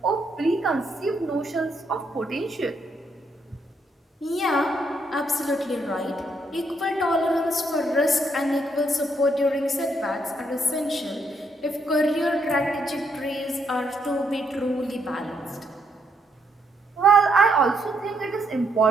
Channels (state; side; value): normal; both; correlation 0.75